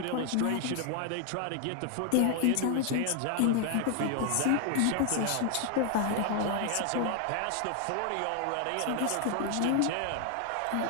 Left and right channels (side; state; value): both; different; correlation 0.00